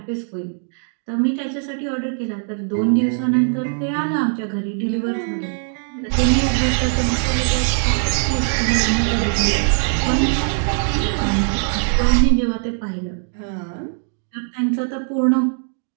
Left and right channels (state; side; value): silent; left; 62 dB below the other